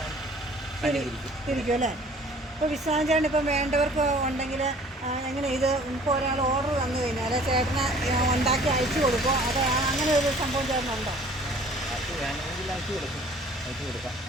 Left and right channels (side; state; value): both; normal; correlation 0.52